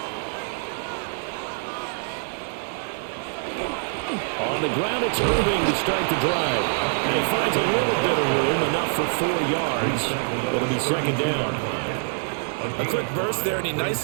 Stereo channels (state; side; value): silent; left; 62 dB below the other